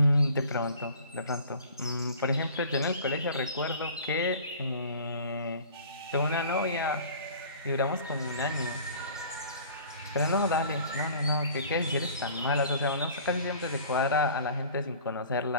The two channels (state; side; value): inverted; both; correlation -0.47